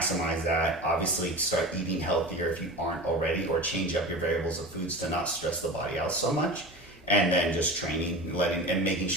that. Obviously, start eating healthier if you aren't already, or change up your variables of foods to not stress the body out so much. And then just training, and making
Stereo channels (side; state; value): both; normal; correlation 0.31